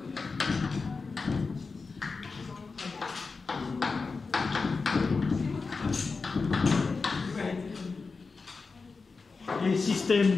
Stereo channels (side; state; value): right; quieter; 4.4 dB